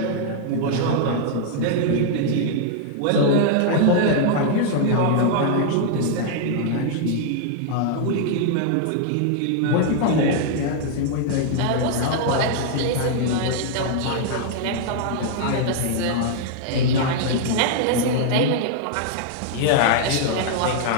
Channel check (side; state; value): both; different; correlation -0.01